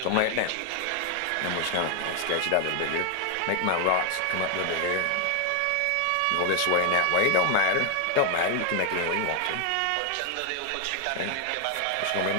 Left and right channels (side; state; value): both; different; correlation 0.00